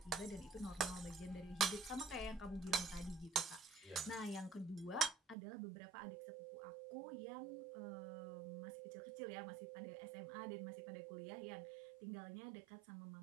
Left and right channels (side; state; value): left; drops out; at 5.4 s